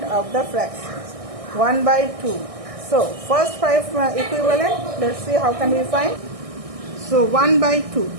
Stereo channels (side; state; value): left; late; 1.6 ms